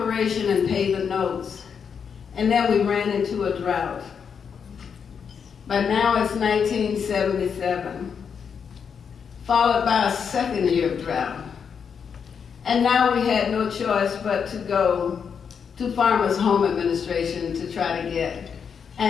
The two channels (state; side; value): quieter; right; 6.8 dB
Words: and pay the notes. And then we ran into a drought. But now it's 1977, followed by a second year of drought. And now we had no choice but to go to Farmers Home Administration to try to get